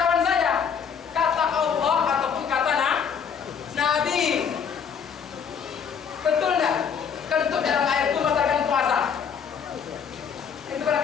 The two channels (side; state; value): right; quieter; 7.0 dB